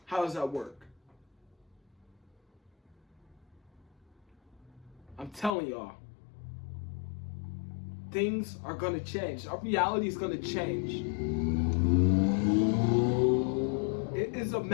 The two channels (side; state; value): right; drops out; at 5.5 s